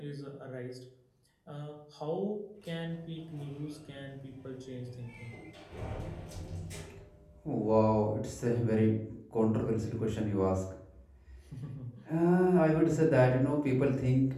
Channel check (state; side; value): identical; both; correlation 1.00